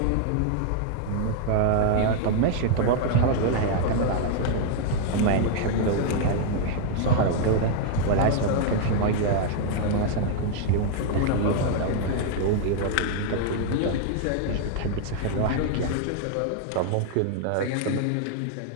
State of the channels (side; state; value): both; different; correlation 0.00